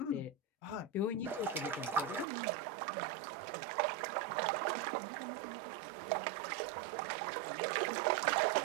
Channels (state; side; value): drops out; left; at 2.2 s